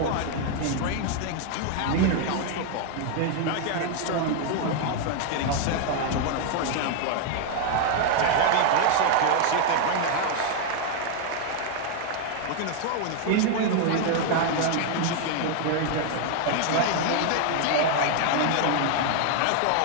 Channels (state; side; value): different; both; correlation 0.00